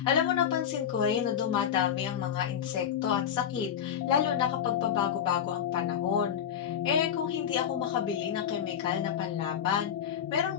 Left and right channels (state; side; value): quieter; right; 8.9 dB